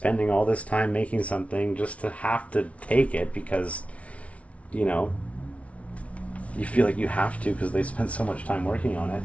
all this time making something just to have to take it because, you know, you feel like you have to because they spent so much time working on it.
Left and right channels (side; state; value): right; late; 0.064 ms